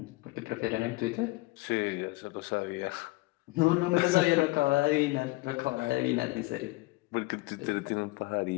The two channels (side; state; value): right; quieter; 22.0 dB